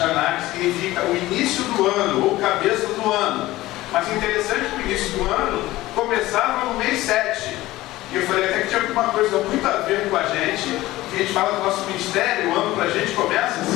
que significa o início do ano, ou cabeça do ano. Mas interessante que o início do ano começava no mês 7. E eu falei até que tinha alguma coisa muito a ver com a gente, que a gente fala do nosso ministério, o ano para a gente começa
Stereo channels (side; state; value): right; quieter; 17.2 dB